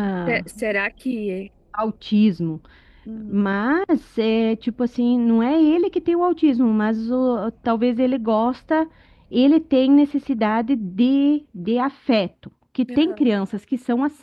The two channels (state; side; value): identical; both; correlation 1.00